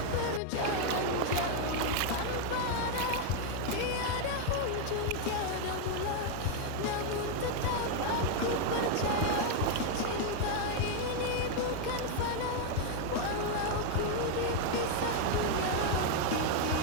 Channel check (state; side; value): different; both; correlation 0.00